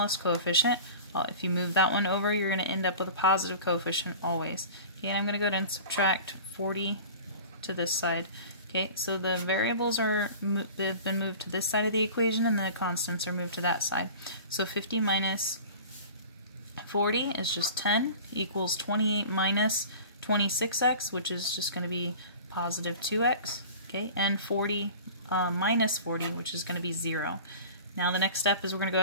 coefficient. If you move that one over, you're going to end up with a positive coefficient always. Okay, and I'm going to go ahead and subtract 40 to this side. Okay, so the variables they've been moved to this side of the equation, and the constants are moved to that side. So 50 minus 40 is just 10, equals 28 minus 26x, which is just going to be positive 2x. Okay, and 40 minus 40, which is going to be 0. Now the next step is we're going to go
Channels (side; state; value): both; inverted; correlation -0.39